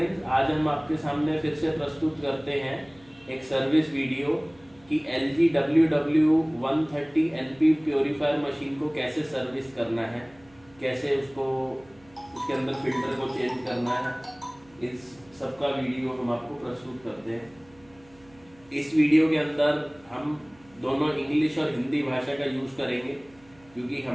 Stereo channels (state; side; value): noise; right; hum, 28 dB below the sound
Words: आज हम आपके सामने फिर से प्रस्तुत करते हैं एक सर्विस वीडियो कि LG WW130NP प्योरीफायर मशीन को कैसे सर्विस करना है, कैसे उसके अंदर फिल्टर को चेंज करना है, इस सबका वीडियो हम आपको प्रस्तुत करते हैं। इस वीडियो के अंदर हम दोनों इंग्लिश और हिंदी भाषा का यूज़ करेंगे क्योंकि